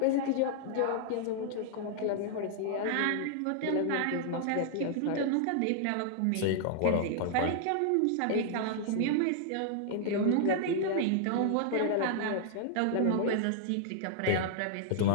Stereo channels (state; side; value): different; both; correlation -0.01